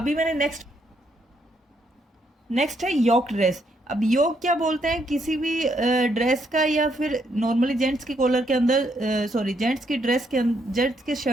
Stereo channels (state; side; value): normal; both; correlation 0.75